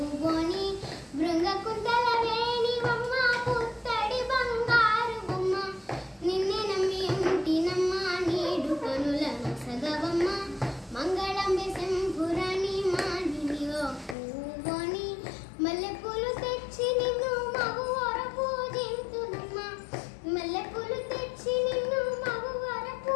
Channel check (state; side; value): drops out; right; at 14.2 s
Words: బృంగకుంతల వేణి బొమ్మ పుత్తడి బంగారు బొమ్మ నిన్నే నమ్మి ఉంటినమ్మ నీడు కనులను సగవమ్మ మంగళంబే శంభురాణి మానిని ఓ పూవోణి మల్లెపూలు తెచ్చి నిన్ను మగువర పూజింతునమ్మ మల్లెపూలు తెచ్చి నిన్ను మగువర